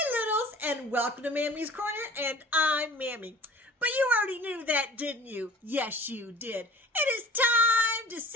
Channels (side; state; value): both; normal; correlation 0.45